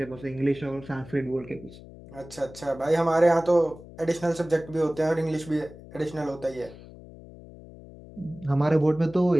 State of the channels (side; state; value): left; noise; hum, 18 dB below the sound